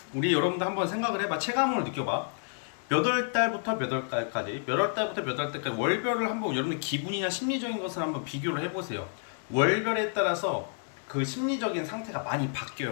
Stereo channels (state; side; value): silent; right; 58 dB below the other